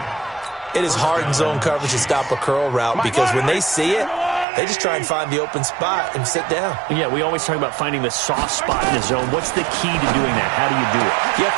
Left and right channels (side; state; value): left; drops out; at 4.5 s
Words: It is hard in zone coverage to stop a curl route because when they see it, they just try and find the open spot and sit down. Yeah, we always talk about finding the soft spot in the zone. What's the key to doing that? How do you do it? You have